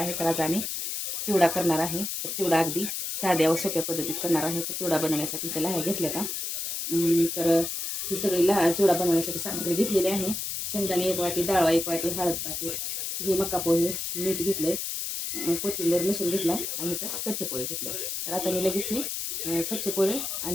तर आज आम्ही चिवडा करणार आहे. तर चिवडा अगदी साध्या व सोप्या पद्धतीत करणार आहे. तर चिवडा बनवण्यासाठी त्याला हे घेतलं का तर ही सगळी चिवडा बनवण्यासाठी सामग्री घेतलेली आहे. शेंगदाणे 1 वाटी, डाळ 1 वाटी, हळद पाकीट, हे मका पोहे, मीठ घेतले, कोथिंबीर लसूण घेतला आणि इथं कच्चे पोहे घेतले. तर आता मी लगेच हे कच्चे पोहे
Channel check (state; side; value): noise; left; hiss, 3 dB below the sound